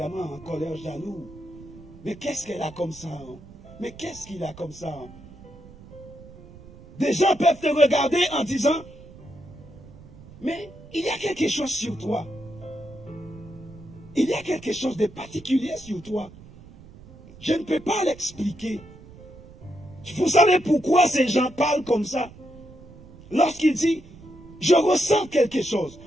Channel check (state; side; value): noise; right; rumble, 20 dB below the sound